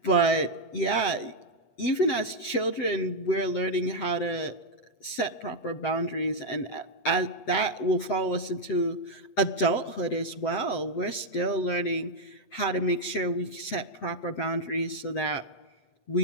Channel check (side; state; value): right; late; 8.2 ms